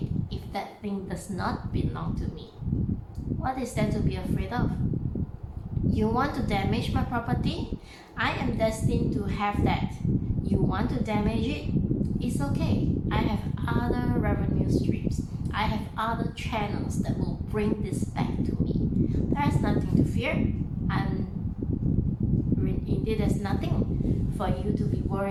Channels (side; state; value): both; identical; correlation 1.00